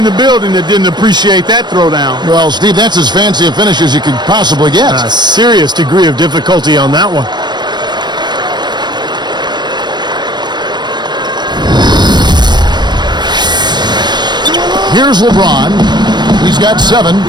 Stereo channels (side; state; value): left; late; 0.21 ms